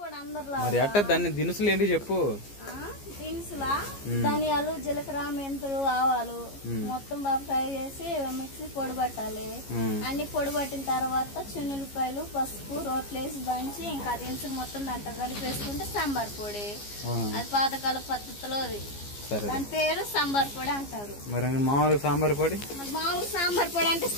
కూడా అందరిలో మరి అట్ట దాన్ని దినుసులు ఏంటి చెప్పు. దినుసులా ధనియాలు, జీలకర్ర, మెంతులు, ఆవాలు మొత్తం బాగా ఫ్రై చేసి మిక్సీ పొడి పట్టాలి. అన్ని పొడి పట్టిన తర్వాత చిన్నులపాయలు, పసుపు, రోట్లేసి దంచి ఇంకా దినుసులు మొత్తం దాంట్లో కలిపేసుకుంటే సాంబార్ పొడి. అది పాతకాల పద్ధతిలో దాని పేరు సాంబార్ పొడి అంటారు. మరి మామూలుగా సాంబార్ పొడి, మామూలు సాంబార్ పొడి అంటే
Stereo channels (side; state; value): right; late; 15 ms